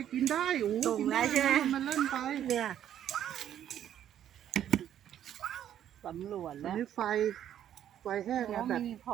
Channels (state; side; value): quieter; left; 10.5 dB